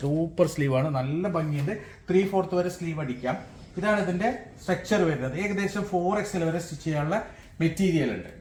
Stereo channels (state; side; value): identical; both; correlation 1.00